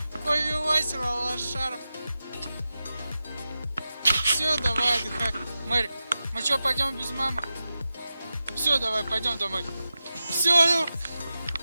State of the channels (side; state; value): both; inverted; correlation -0.92